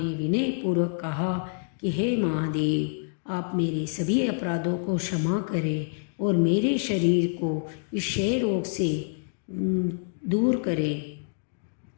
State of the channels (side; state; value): right; silent; digital silence